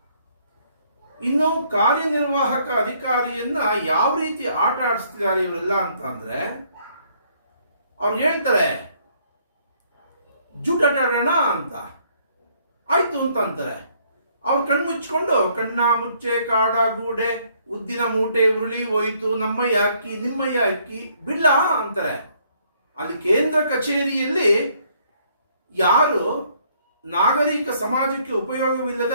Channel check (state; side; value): inverted; both; correlation -0.66